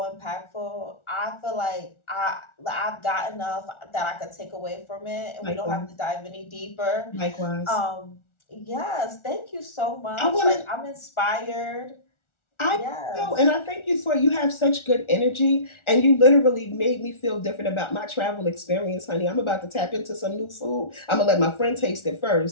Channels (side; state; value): right; late; 1.4 ms